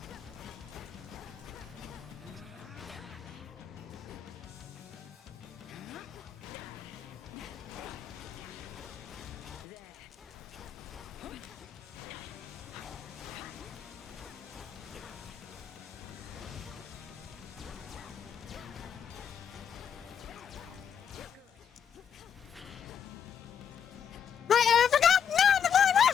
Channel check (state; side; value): quieter; right; 8.0 dB